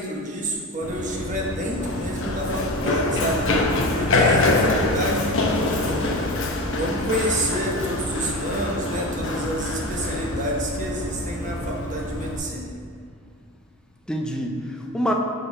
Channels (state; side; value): normal; both; correlation 0.28